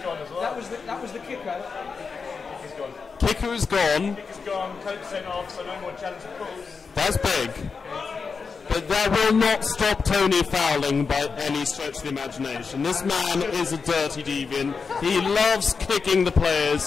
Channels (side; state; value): right; quieter; 5.2 dB